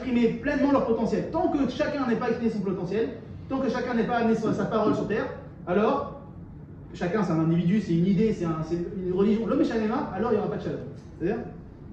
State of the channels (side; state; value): both; identical; correlation 1.00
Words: pleinement leur potentiel. Tant que chacun n'est pas exprimé son potentiel, tant que chacun n'est pas amené sa parole sur terre, alors, chacun c'est un individu, c'est une idée, c'est une religion, l'homme est shalema, alors il n'y aura pas de Shalom. C'est-à-dire,